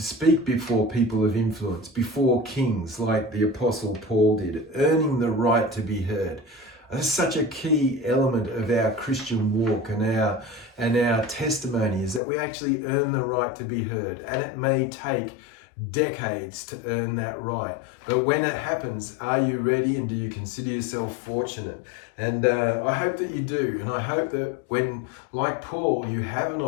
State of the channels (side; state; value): right; drops out; at 12.2 s